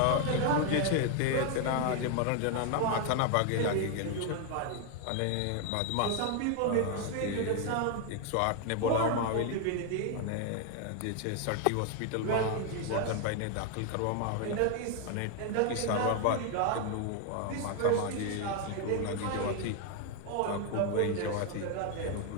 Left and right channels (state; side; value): different; both; correlation 0.01